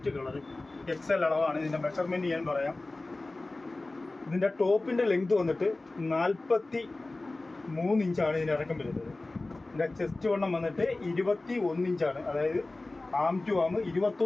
കളർ. XL അളവാണ്. ഇതിൻ്റെ മെഷർമെൻറ്റ് ഞാൻ പറയാം. ഇതിൻ്റെ ടോപ്പിൻ്റെ ലെങ്ത് വന്നിട്ട് 43 ഇഞ്ചാണ് ഇതിൻ്റെ ഇറക്കം വരുന്നത്. ഇതിൻ്റെ ചെസ്റ്റ് വണ്ണം വന്നിട്ട് 21 ഇഞ്ചാണ്. അതായത് ആം ടു ആം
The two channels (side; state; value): right; quieter; 3.0 dB